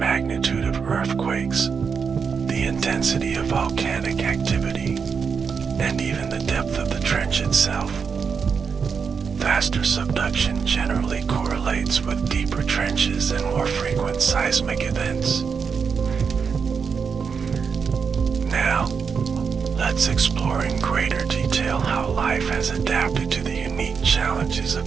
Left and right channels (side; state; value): left; quieter; 6.0 dB